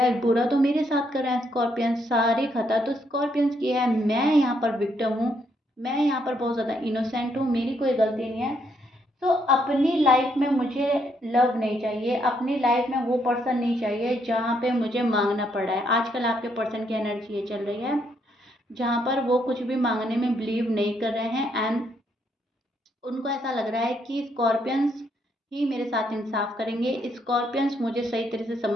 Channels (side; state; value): both; normal; correlation 0.74